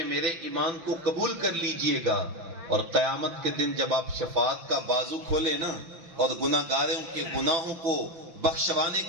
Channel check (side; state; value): left; late; 5.9 ms